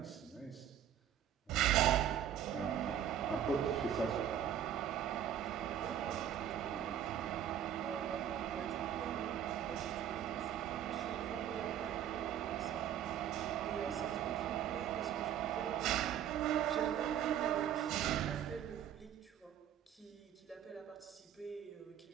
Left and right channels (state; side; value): quieter; left; 10.0 dB